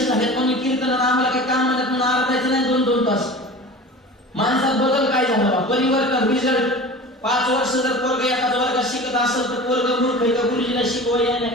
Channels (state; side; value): normal; both; correlation 0.36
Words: झालेत म्हणून कीर्तनाला आम्हाला काही काम म्हणत म्हणून आरडायचं नाही 2-2 तास माणसात बदल काय झाला परिवर्तन रिझल्ट 5 वर्ष जर पोरग एखाद्या वर्गात शिकत असेल तर पोरग मूर्ख आहे का गुरुजीला शिकवायला नाही